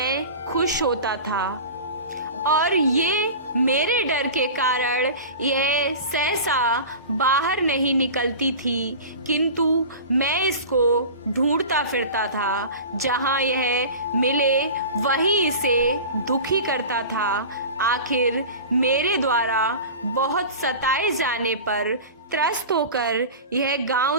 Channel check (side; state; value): both; inverted; correlation -0.33